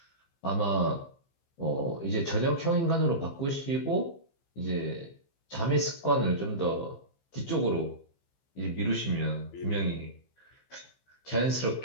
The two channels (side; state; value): right; late; 15 ms